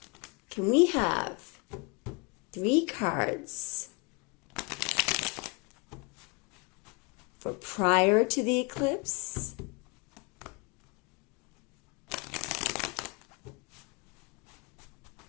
Can we have 3 cards for prior to the eclipse,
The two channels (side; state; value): right; quieter; 29.6 dB